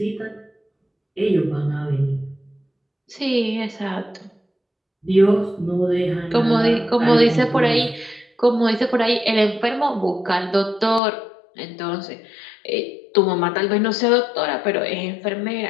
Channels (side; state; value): right; drops out; at 11.0 s